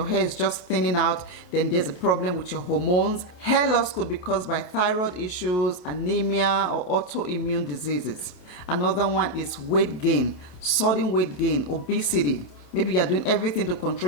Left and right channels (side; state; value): right; late; 28 ms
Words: hair is just thinning out, then there's a problem with your hormones. Hair loss could be caused by thyroid issues, anemia, or autoimmune diseases. Another one is weight gain, sudden weight gain, obesity. Maybe you're doing everything to